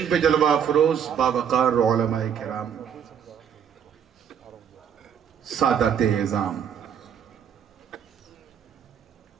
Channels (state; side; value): quieter; left; 8.2 dB